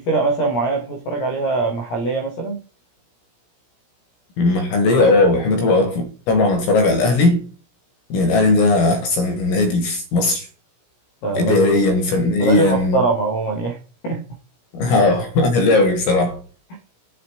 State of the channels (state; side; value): late; right; 17 ms